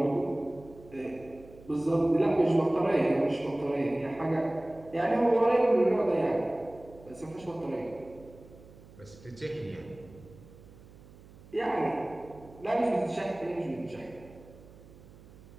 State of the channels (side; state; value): right; noise; hum, 21 dB below the sound